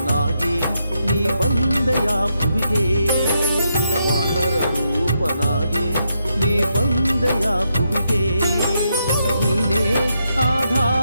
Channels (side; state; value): both; inverted; correlation -0.81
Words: ನೀ ಬಂದೆಯ ಭುವಿಗೆ ವಾನರ ರೂಪನಾಗಿ ನೀ ಬಂದೆಯ ಭುವಿಗೆ ನೀನೇ